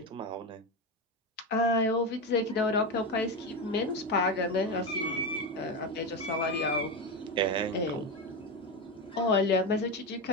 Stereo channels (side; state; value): both; normal; correlation 0.15